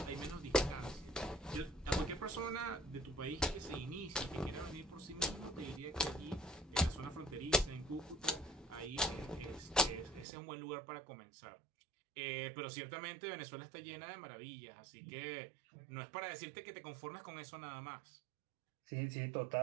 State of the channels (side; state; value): left; drops out; at 10.2 s